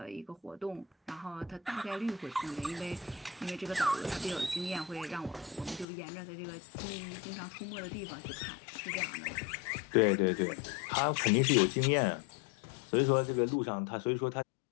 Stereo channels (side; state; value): right; drops out; at 5.9 s